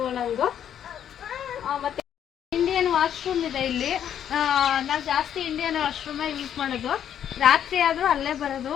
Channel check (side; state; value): right; quieter; 9.6 dB